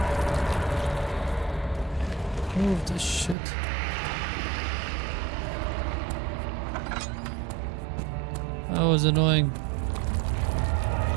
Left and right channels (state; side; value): drops out; left; at 3.4 s